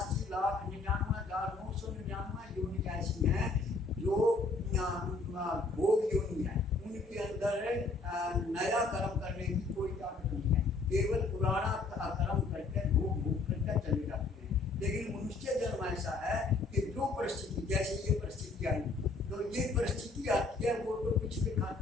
योनि ऐसी हैं जो भोग योनि है, उनके अंदर नया कर्म करने की कोई ताकत नहीं है, केवल पुराना कर्म करके भोग करके चले जाते हैं। लेकिन मनुष्य जन्म ऐसा है कि जो परिस्थिति, जैसे ये परिस्थिति आई, तो ये परिस्थिति आती है वो तो पिछले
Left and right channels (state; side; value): quieter; right; 3.7 dB